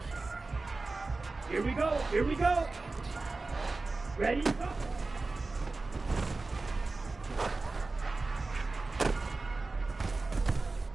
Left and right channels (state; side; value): quieter; left; 3.5 dB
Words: Here we go, here we go. Ready, go.